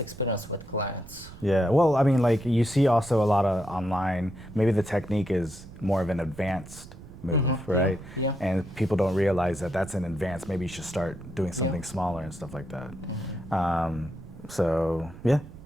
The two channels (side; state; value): right; noise; rumble, 16 dB below the sound